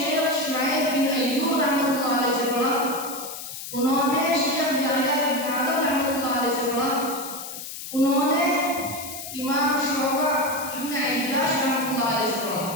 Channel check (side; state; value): left; noise; hiss, 9 dB below the sound